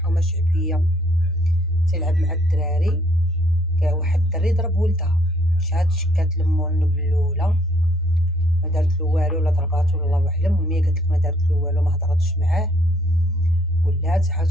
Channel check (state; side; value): normal; both; correlation 0.66